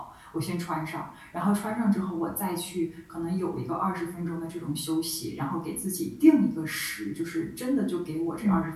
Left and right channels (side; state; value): both; identical; correlation 1.00